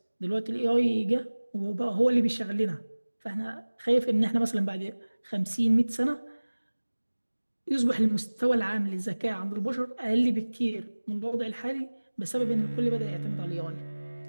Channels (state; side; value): inverted; both; correlation -1.00